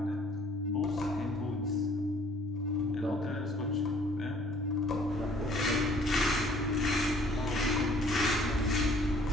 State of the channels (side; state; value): both; normal; correlation 0.57